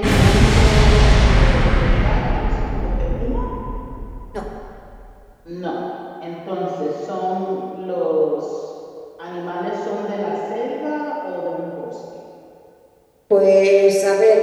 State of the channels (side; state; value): both; identical; correlation 1.00